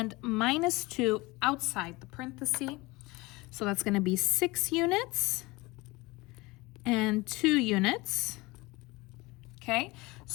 minus 2 outside the parenthesis. So that's going to be 6 units and 2 units. Okay,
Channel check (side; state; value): right; quieter; 22.7 dB